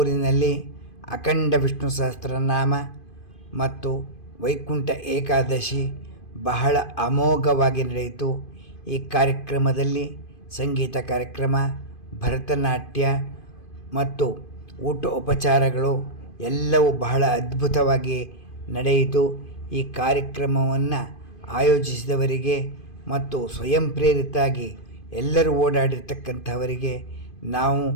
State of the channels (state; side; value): late; right; 2.5 ms